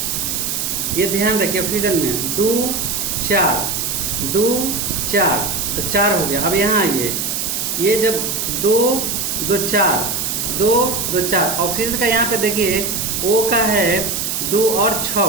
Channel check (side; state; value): right; noise; hiss, 1 dB below the sound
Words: ये ध्यान रखिए, ऑक्सीजन में 2 4 2 4, तो 4 हो गया। अब यहाँ आइए, ये जब 2 2 4 2 2 4, ऑक्सीजन का यहाँ पे देखिए O का है 2 और 6,